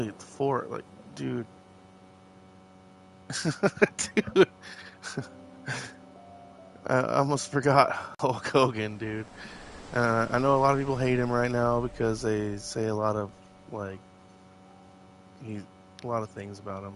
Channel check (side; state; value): both; identical; correlation 1.00